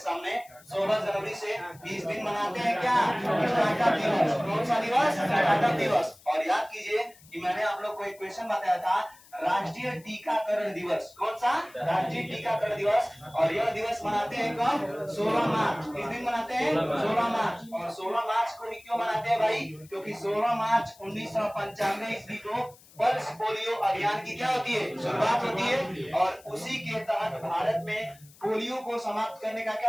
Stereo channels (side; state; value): left; noise; hiss, 25 dB below the sound